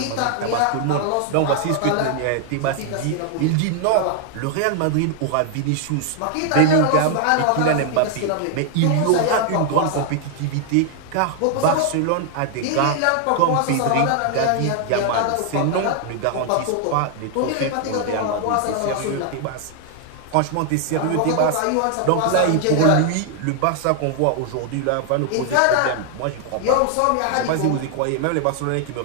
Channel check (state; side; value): different; both; correlation 0.00